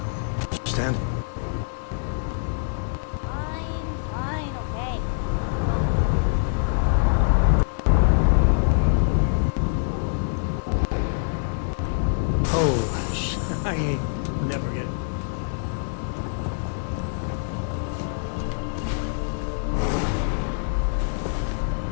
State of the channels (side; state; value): right; silent; digital silence